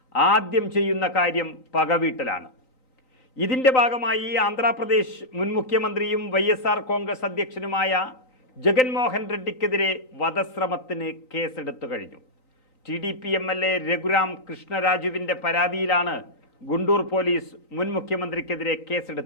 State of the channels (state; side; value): late; right; 3.9 ms